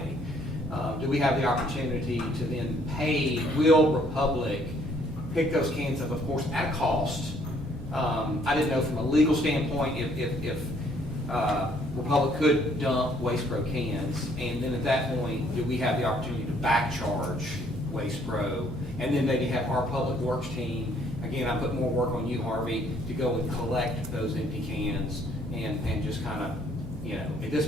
do we have the opportunity to then pay Will Republic, pick those cans up, of course, at cost? I didn't know from a legal standpoint if Republic could dump Waste Pro cans, and then at that point, do we have the opportunity to back charge Waste Pro, and then maybe have our public works team, again, I put more work on you, Harvey, to go and collect those empty cans and just kind of, at this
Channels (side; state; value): both; normal; correlation 0.64